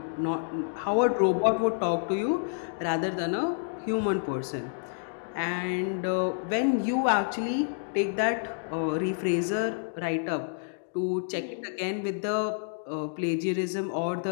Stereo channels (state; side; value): silent; right; digital silence